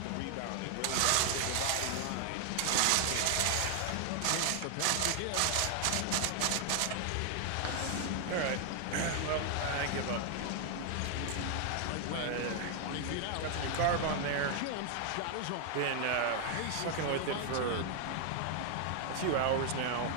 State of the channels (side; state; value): both; different; correlation 0.00